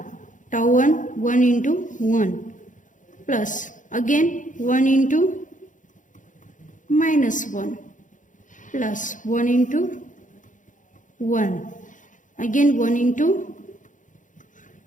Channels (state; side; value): late; right; 0.37 ms